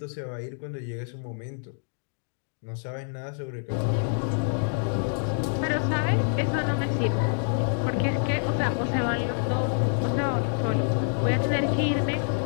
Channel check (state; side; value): silent; right; digital silence